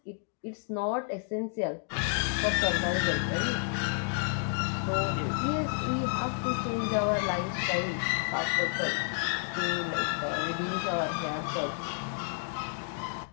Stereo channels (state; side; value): silent; right; 57 dB below the other